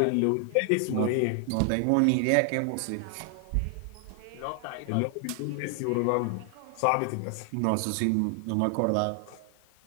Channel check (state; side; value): different; both; correlation 0.00